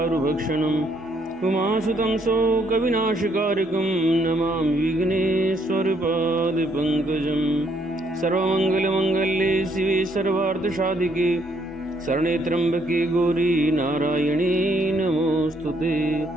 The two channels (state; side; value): normal; both; correlation 0.70